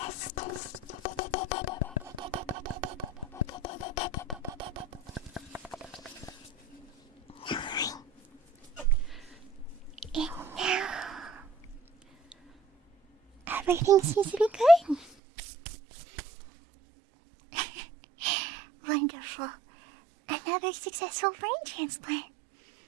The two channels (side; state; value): left; drops out; at 15.1 s